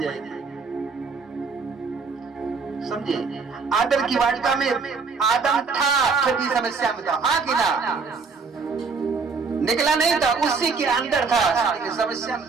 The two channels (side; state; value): left; quieter; 4.9 dB